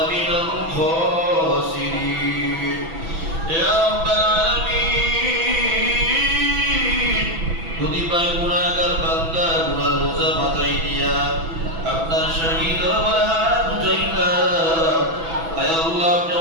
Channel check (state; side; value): late; left; 6.1 ms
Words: من الخاسرين يا رب العالمين কতিপয় গুনাহগার বান্দা গুনার বোঝা মাথায় নিয়া আপনার শাহী দরবারে হাত উঠাইলাম। আয় আল্লাহ, আপনি